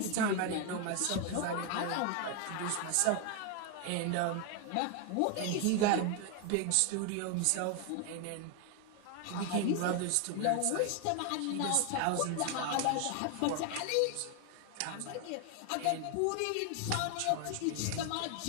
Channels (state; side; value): different; both; correlation 0.01